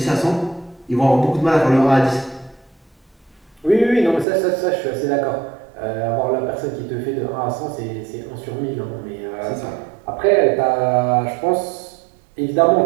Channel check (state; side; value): drops out; left; at 4.2 s